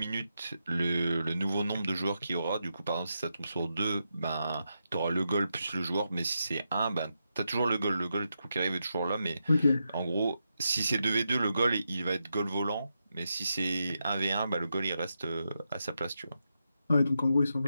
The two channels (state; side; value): inverted; both; correlation -0.86